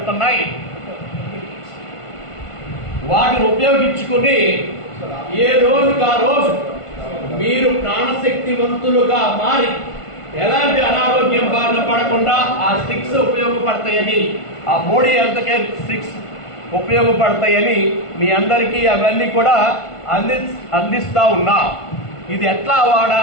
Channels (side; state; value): right; late; 1.5 ms